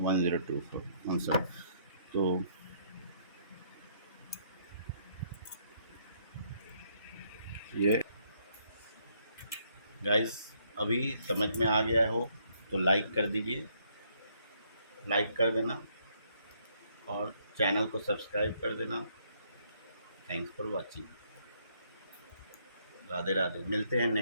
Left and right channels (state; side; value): inverted; both; correlation -0.70